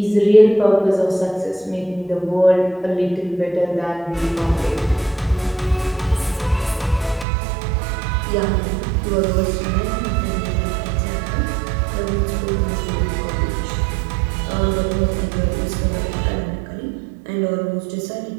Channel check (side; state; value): left; drops out; at 7.2 s